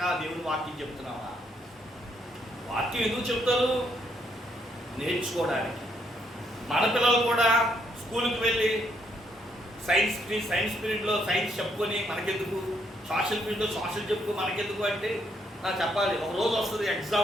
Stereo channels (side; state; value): both; normal; correlation 0.73